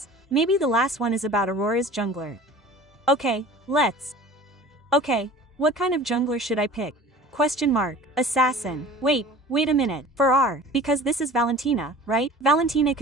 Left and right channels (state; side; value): normal; both; correlation 0.43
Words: maybe the last one is about Aurora's jungler. Okay, let's. Okay, what kind of jungler should I pick? Question mark. Assassin. Wait a minute. For R, because this is Valentina, right? Valentina